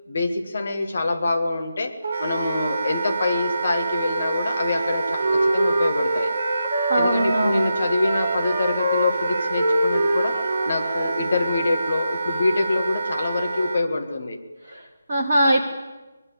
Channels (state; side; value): inverted; both; correlation -0.86